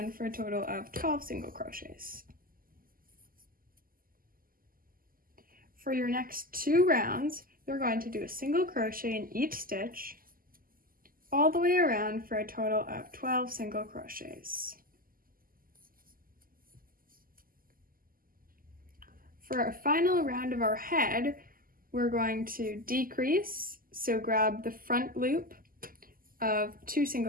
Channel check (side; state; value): left; late; 0.42 ms